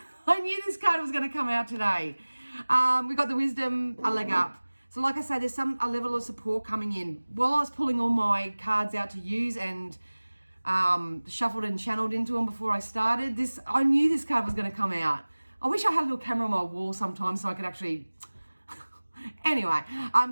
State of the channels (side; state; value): both; inverted; correlation -1.00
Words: knew this card was going to come out today. We got the wisdom, a leg up. So like I say, there's a level of support coming in. While I was pulling all my cards out to use and shuffled and channeled into them before I started, I knew this card was going to come out. I wish I had a little camera on my wall sometimes so I could actually... Anyway,